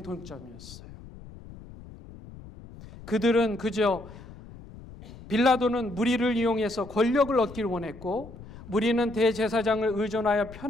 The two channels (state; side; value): noise; left; rumble, 17 dB below the sound